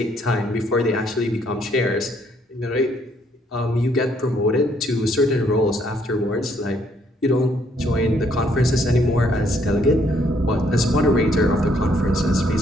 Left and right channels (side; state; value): both; normal; correlation 0.68